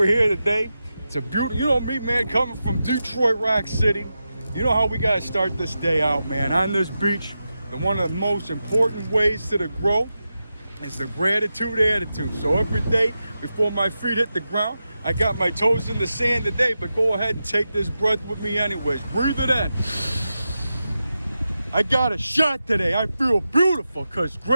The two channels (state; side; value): inverted; both; correlation -0.91